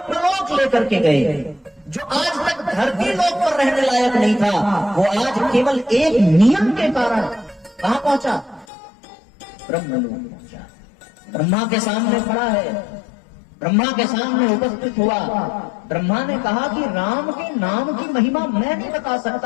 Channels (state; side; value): drops out; right; at 8.7 s